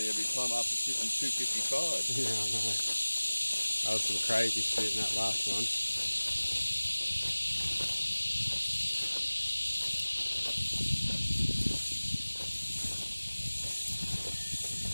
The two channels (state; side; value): inverted; both; correlation -1.00